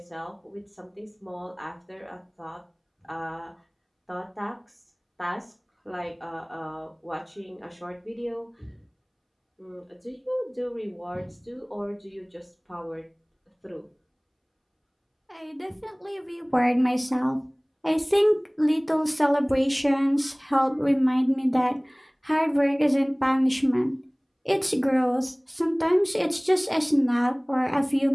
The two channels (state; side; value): identical; both; correlation 1.00